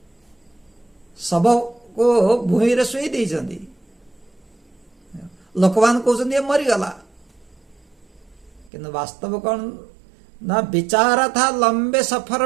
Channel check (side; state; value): left; drops out; at 8.7 s